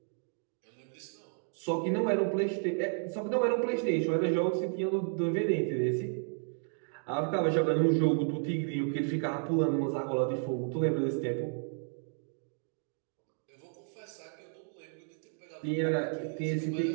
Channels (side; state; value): left; silent; 56 dB below the other